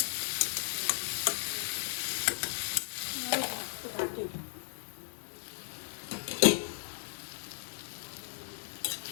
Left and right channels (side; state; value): right; silent; 54 dB below the other